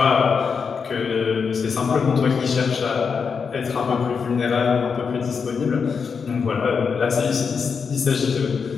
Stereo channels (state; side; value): quieter; right; 5.8 dB